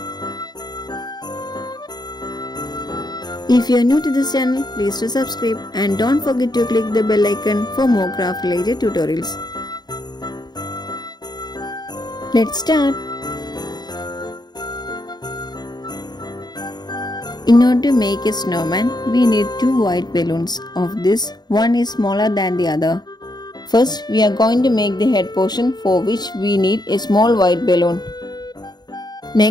If you are new to this channel, please do subscribe and don't forget to click the bell icon for more craft related tutorials. Let's start. In order to make a snowman, we need two white balloons. Of this, one is smaller than the other. First, we are going to make the head portion, for which we need a small white balloon.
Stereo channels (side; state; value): right; late; 0.20 ms